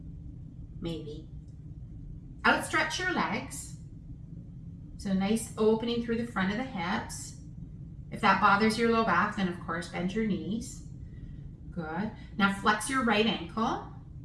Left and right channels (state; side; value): identical; both; correlation 1.00